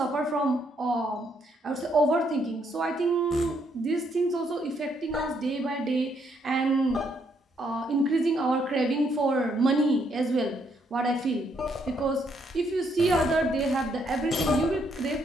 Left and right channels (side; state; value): both; normal; correlation 0.73